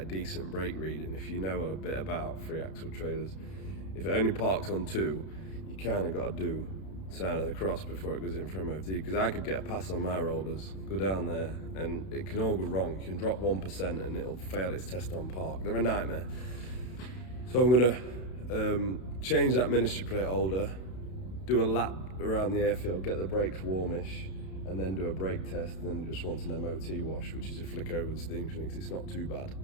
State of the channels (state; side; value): late; right; 32 ms